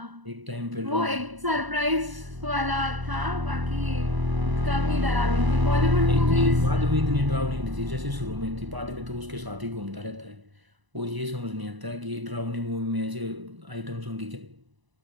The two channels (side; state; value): left; late; 1.0 ms